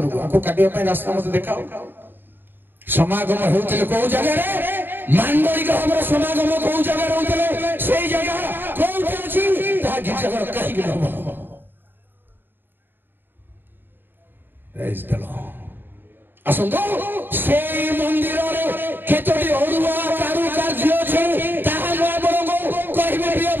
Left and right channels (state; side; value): late; left; 0.095 ms